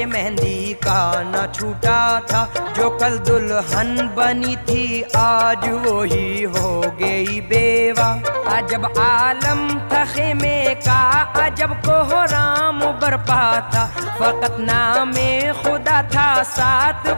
मेहंदी का न छूटा था, जो कल दुल्हन बनी थी आज वो ही हो गई बेवा। अजब आलम था खेमे का, अजब कोहराम बरपा था, फकत नामे खुदा था, साथ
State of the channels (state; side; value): inverted; both; correlation -1.00